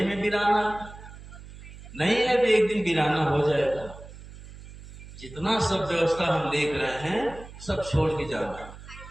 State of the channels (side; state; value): right; noise; hum, 16 dB below the sound